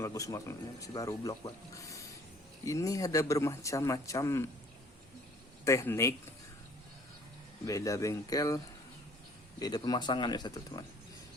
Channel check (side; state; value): both; normal; correlation 0.54